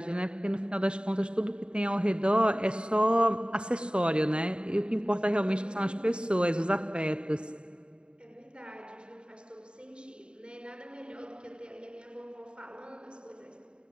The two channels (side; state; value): left; late; 0.051 ms